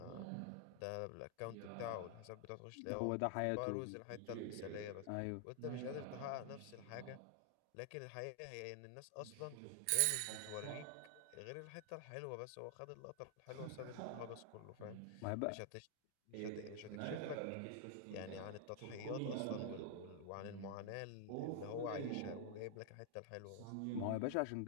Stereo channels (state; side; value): different; both; correlation 0.00